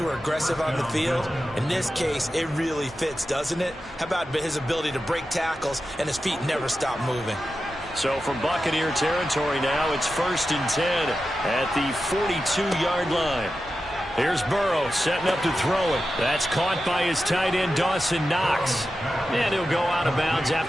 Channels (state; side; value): normal; both; correlation 0.91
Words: are aggressive on the field. In this case, it really fits, doesn't it? How about his ability to break tackles and his feet never stop moving? So from Buccaneer territory now, it's 1st and 10 at the 42-yard line. Here's Burrow setting up to throw it. That's caught by his tight end, Dawson Knox. And he'll go out of bounds